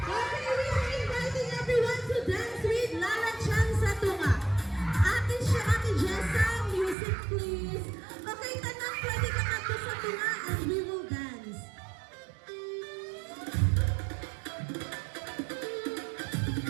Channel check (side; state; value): left; drops out; at 7.0 s